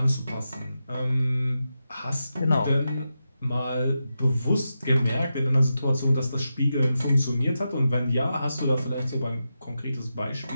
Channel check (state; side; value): inverted; both; correlation -0.89